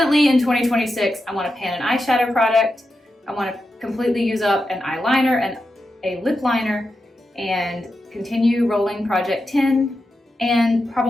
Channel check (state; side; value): normal; both; correlation 0.89